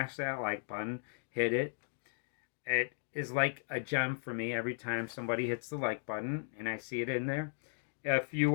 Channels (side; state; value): right; silent; digital silence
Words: that like button, hit it. It is like a gem for me every time somebody hits the like button and I see it in there. If you